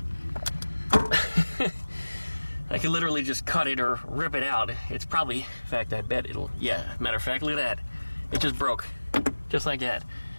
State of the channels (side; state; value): both; inverted; correlation -1.00